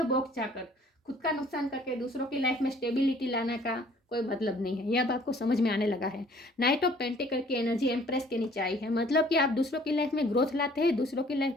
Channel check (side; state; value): both; normal; correlation 0.56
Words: बॉक्स जाकर खुद का नुकसान करके दूसरों की लाइफ में स्टेबिलिटी लाने का कोई मतलब नहीं है। यह अब आपको समझ में आने लगा है। नाइट ऑफ पेंटिकल की एनर्जी एम्प्रेस के नीचे आई है, मतलब कि आप दूसरों की लाइफ में ग्रोथ लाते हैं, दूसरों की